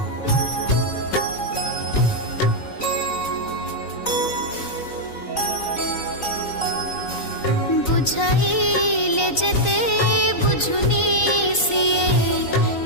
बुझाइले जेते बुझुनी सिए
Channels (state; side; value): late; right; 3.9 ms